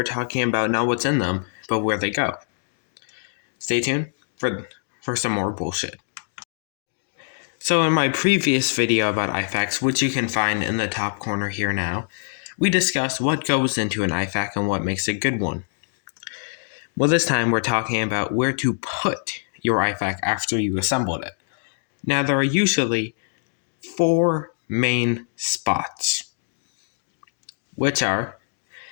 talking about not what's in them, but where they go. Stay tuned for some more bullshit. So in my previous video about IFAKs, which you can find in the top corner here now, we discussed what goes into an IFAK and what makes a good one. Well, this time we're talking about where to put your IFAK after you assembled it. Now there are usually 4 main spots, which are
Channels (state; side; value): silent; right; digital silence